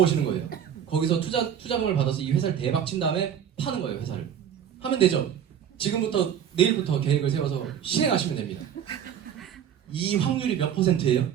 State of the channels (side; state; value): left; quieter; 9.0 dB